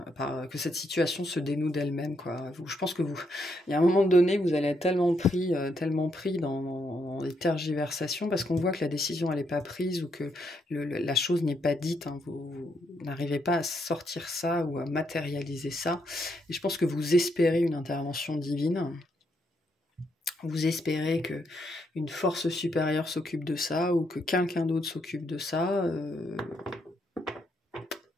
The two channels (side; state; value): both; normal; correlation 0.77